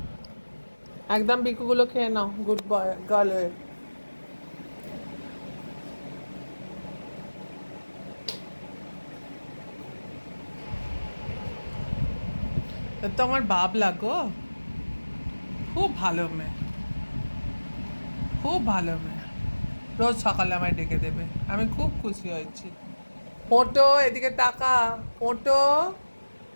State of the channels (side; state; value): both; inverted; correlation -1.00